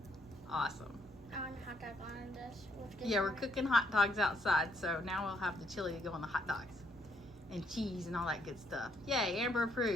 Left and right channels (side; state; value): both; normal; correlation 0.72